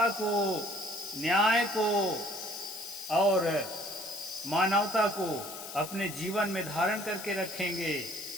को, न्याय को और मानवता को अपने जीवन में धारण करके रखेंगे,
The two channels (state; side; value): noise; left; hiss, 10 dB below the sound